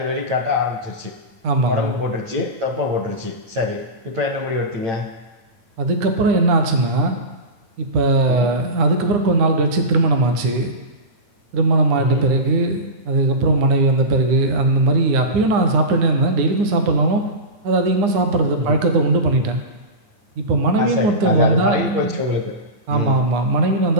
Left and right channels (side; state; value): left; late; 9.7 ms